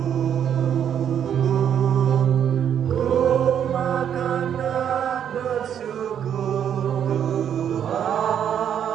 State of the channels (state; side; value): quieter; left; 9.0 dB